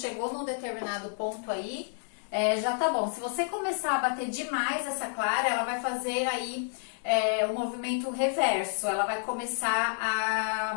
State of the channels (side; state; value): right; silent; digital silence